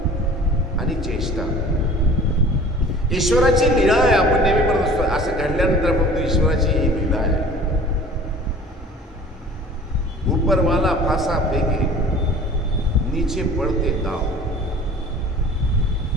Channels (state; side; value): normal; both; correlation 0.45